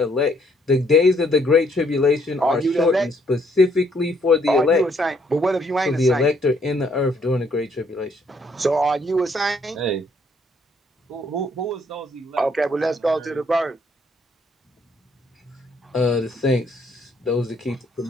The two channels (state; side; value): normal; both; correlation 0.68